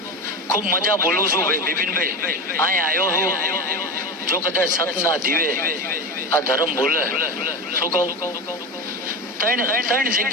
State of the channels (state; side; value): normal; both; correlation 0.24